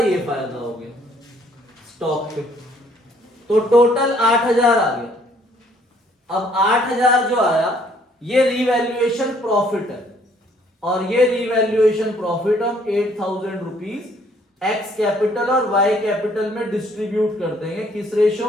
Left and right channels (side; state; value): both; normal; correlation 0.63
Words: फायदा हो गया। स्टॉक पे। तो टोटल 8,000 आ गया। अब 8,000 जो आया ये रिवैल्यूएशन प्रॉफिट है, और ये रिवैल्यूएशन प्रॉफिट हम 8,000 रुपीज एक्स कैपिटल और वाई कैपिटल में डिस्ट्रीब्यूट कर देंगे। किस